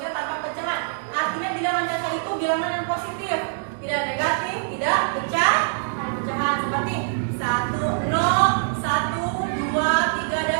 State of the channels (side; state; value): left; silent; digital silence